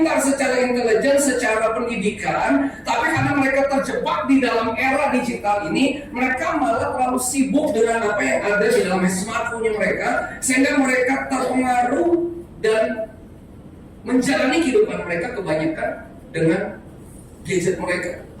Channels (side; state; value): both; identical; correlation 1.00